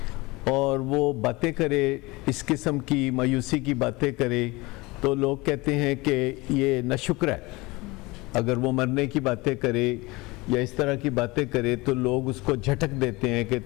اور وہ باتیں کرے, اس قسم کی مایوسی کی باتیں کرے, تو لوگ کہتے ہیں کہ یہ ناشکر ہے. اگر وہ مرنے کی باتیں کرے یا اس طرح کی باتیں کرے تو لوگ اس کو جھٹک دیتے ہیں کہ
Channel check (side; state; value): right; quieter; 23.0 dB